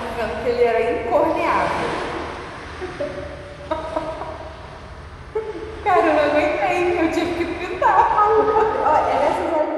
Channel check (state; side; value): identical; both; correlation 1.00